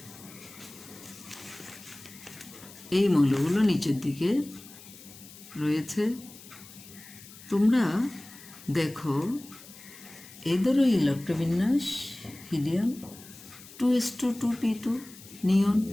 এই মৌলগুলো নিচের দিকে রয়েছে। তোমরা দেখো এদেরও ইলেকট্রবিন্যাস, হিলিয়াম 2s2 2p2, নিয়ন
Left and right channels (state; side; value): noise; left; hiss, 19 dB below the sound